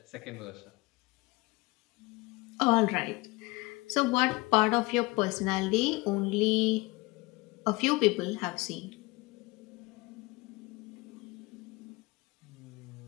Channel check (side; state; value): right; quieter; 23.5 dB